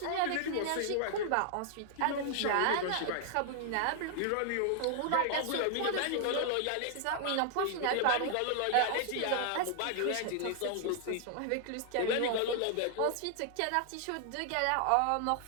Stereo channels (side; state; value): both; different; correlation 0.00